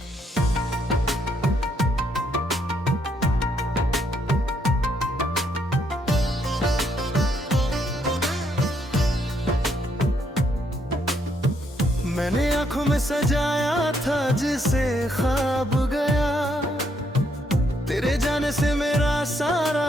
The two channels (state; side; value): normal; both; correlation 0.73